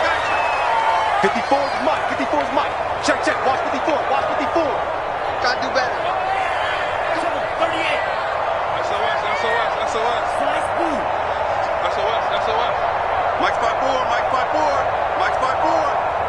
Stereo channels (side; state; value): both; identical; correlation 1.00